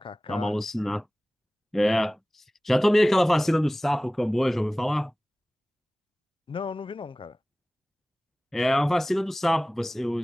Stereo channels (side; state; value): both; normal; correlation 0.98